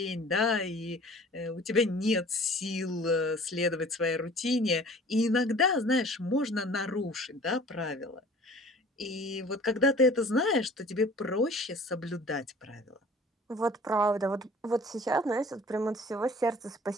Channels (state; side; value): normal; both; correlation 0.48